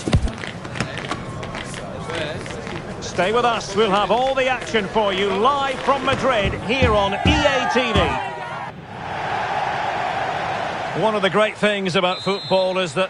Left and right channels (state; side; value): identical; both; correlation 1.00